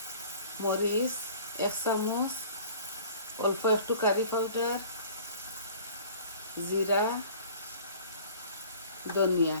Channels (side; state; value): both; inverted; correlation -0.48